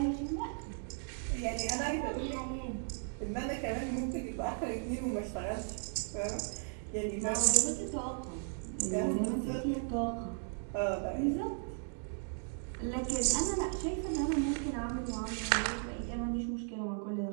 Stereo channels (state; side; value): silent; left; 54 dB below the other